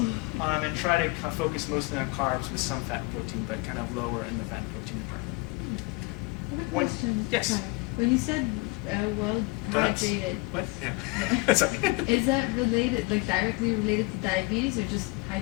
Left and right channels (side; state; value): right; quieter; 25.5 dB